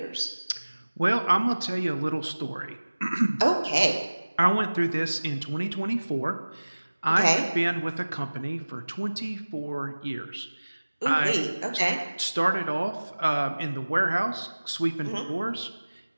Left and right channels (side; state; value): both; inverted; correlation -1.00